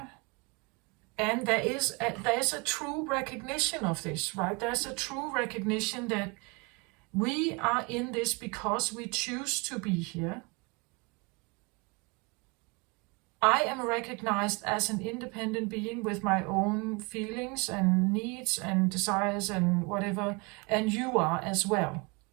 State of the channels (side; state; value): left; quieter; 28.9 dB